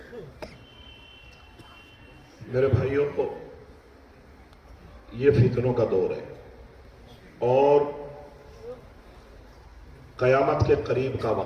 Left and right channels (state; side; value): identical; both; correlation 1.00